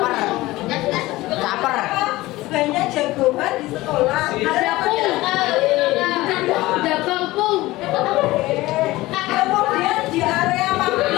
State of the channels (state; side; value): quieter; right; 18.6 dB